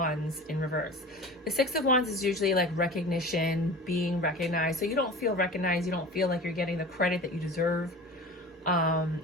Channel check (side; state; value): both; normal; correlation 0.36